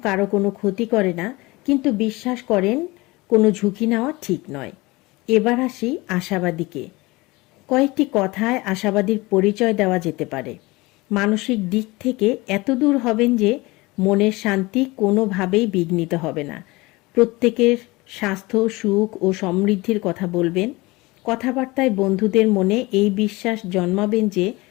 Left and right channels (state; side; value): quieter; right; 22.4 dB